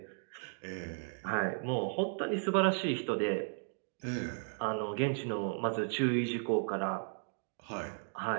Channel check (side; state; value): left; silent; 54 dB below the other